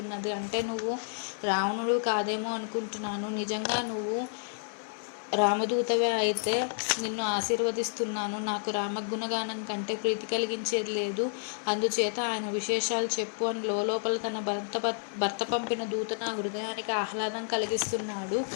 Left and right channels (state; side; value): silent; right; digital silence